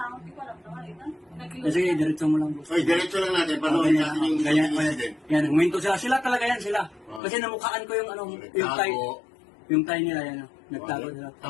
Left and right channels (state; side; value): drops out; right; at 7.2 s